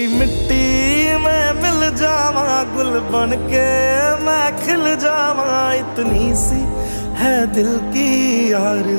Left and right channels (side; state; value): both; inverted; correlation -1.00